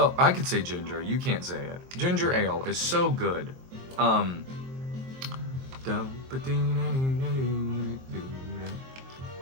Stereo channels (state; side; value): late; left; 23 ms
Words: I could say ginger, you can't say it. Ginger ale is so good.